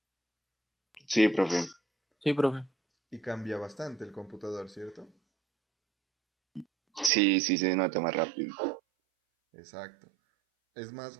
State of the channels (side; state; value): left; drops out; at 7.1 s